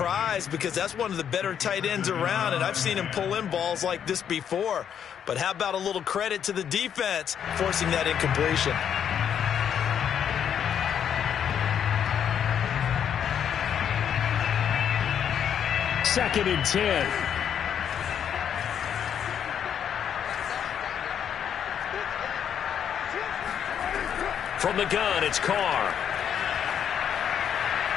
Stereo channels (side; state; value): right; quieter; 8.6 dB